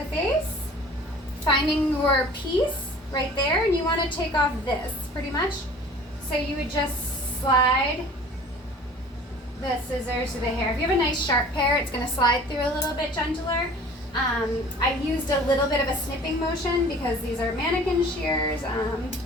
face, finding your piece right there, and you want to take off this pretty much. So you would just slide the scissors to the hair. If you have a nice sharp pair, it's going to slide through a little bit gentler. I used a little bit of a snipping motion because these are mannequin shears.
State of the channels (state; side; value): normal; both; correlation 0.46